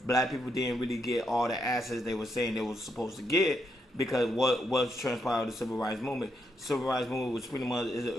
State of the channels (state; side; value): normal; both; correlation 0.80